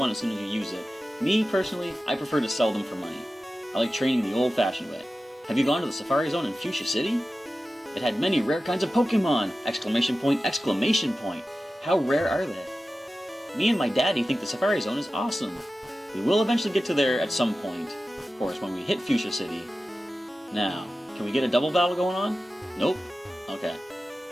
as soon as you use it. Me, personally, I prefer to sell them for money. I like training the old-fashioned way. Have you gone to the Safari Zone in Fuchsia City? It had many rare kinds of Pokemon! Exclamation point, exclamation point. How rare are they? Me and my daddy think the Safari Zone is awesome. We will eventually get to there at some point. Of course, when we hit Fuchsia City. Now, can we get a double battle going on? Nope. Okay.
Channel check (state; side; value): normal; both; correlation 0.94